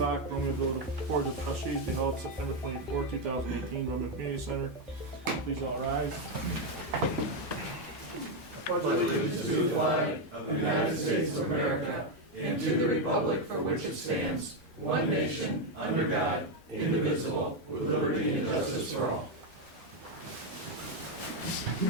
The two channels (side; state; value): both; normal; correlation 0.04